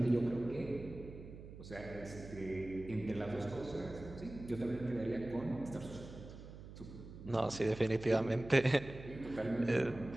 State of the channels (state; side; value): noise; right; hum, 14 dB below the sound